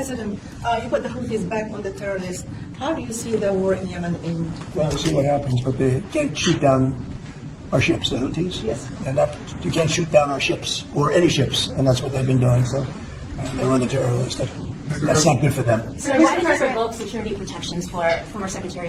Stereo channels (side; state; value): both; identical; correlation 1.00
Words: you put the Houthis back on the terrorists. How do you see the war in Yemen in? Well, we'll see what happens, but they can't shoot down our ships, the Houthis. Yes. And you can't shoot down our ships, or any ships, and that's what they've been doing. So they run the terrorists. That's not good for them. So why did you revoke security protections for former Secretary